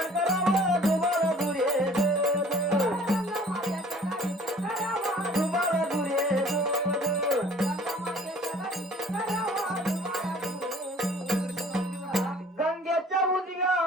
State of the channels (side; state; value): both; normal; correlation 0.52